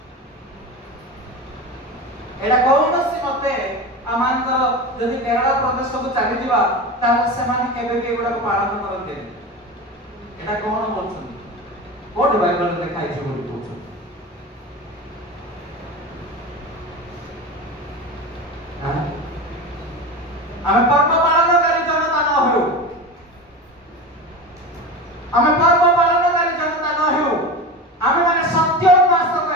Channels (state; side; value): normal; both; correlation 0.27